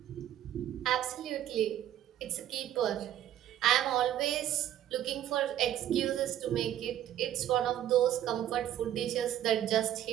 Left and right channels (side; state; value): left; quieter; 11.8 dB